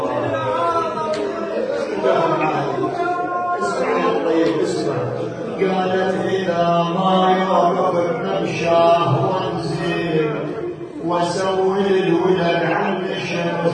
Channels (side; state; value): both; identical; correlation 1.00